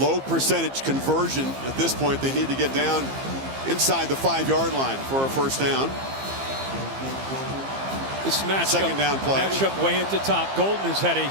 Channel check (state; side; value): late; left; 15 ms